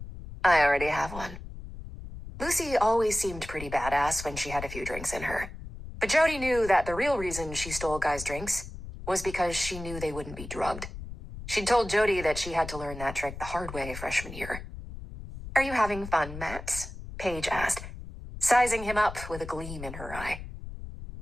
I already have one. Lucy always seemed pretty badass when she had a few drinks in her. But Jody knew that the real reason she stole guys' drinks was because she knew they wouldn't be drugged. She'd told Jody that she had to learn that trick the hard way freshman year. Are you having fun, Matt? Paige asked, sizing him up with a gleam in her eye.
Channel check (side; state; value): left; noise; rumble, 11 dB below the sound